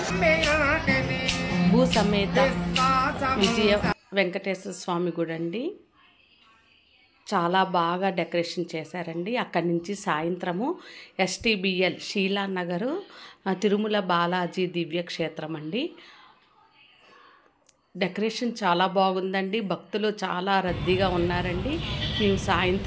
భూ సమేత విజయ వెంకటేశ్వర స్వామి గుడి అండి. చాలా బాగా డెకరేషన్ చేశారండి. అక్కడి నుంచి సాయంత్రము ఎస్టీబీఎల్ శీలానగరు తిరుమల బాలాజీ దివ్యక్షేత్రం అండి. డెకరేషన్ చాలా బాగుందండి. భక్తులు చాలా రద్దీగా ఉన్నారండి. మేము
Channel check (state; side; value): identical; both; correlation 1.00